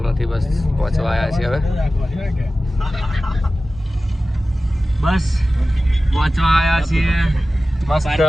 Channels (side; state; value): both; normal; correlation 0.95